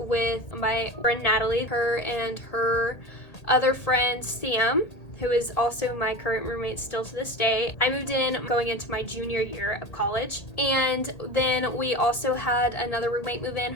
my friend Natalie, her and her other friend Sam, who is also my current roommate still to this day. I moved in going into my junior year of college, and then we also had another roommate move in.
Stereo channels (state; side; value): late; right; 1.8 ms